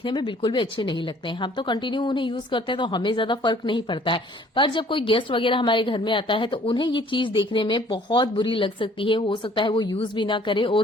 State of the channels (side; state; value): both; normal; correlation 0.56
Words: में बिल्कुल भी अच्छे नहीं लगते हैं। हम तो कंटिन्यू उन्हें यूज करते हैं तो हमें ज्यादा फर्क नहीं पड़ता है, पर जब कोई गेस्ट वगैरह हमारे घर में आता है तो उन्हें ये चीज देखने में बहुत बुरी लग सकती है। हो सकता है वो यूज भी ना करे